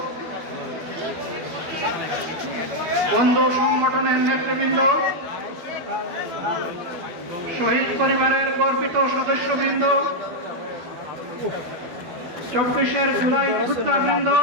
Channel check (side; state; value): left; late; 12 ms